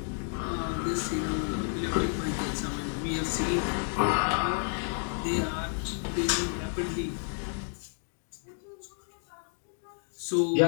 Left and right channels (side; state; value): right; silent; 57 dB below the other